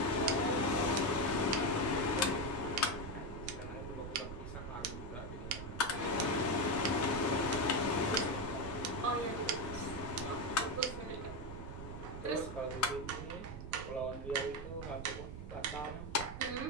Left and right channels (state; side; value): noise; right; rumble, 9 dB below the sound